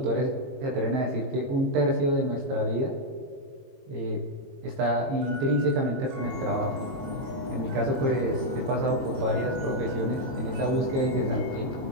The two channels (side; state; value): left; late; 22 ms